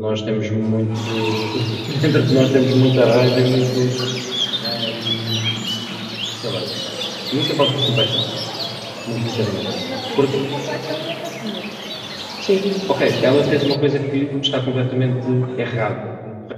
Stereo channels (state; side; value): identical; both; correlation 1.00